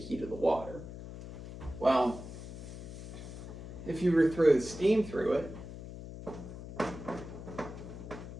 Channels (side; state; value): left; noise; hum, 11 dB below the sound